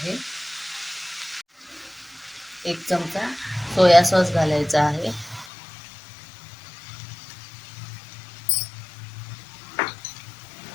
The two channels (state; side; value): drops out; right; at 5.5 s